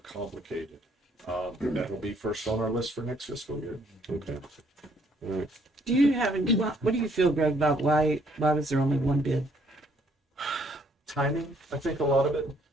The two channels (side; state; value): both; normal; correlation 0.66